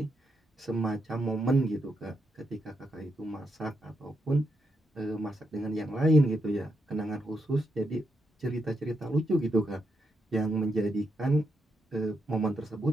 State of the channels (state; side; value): normal; both; correlation 0.82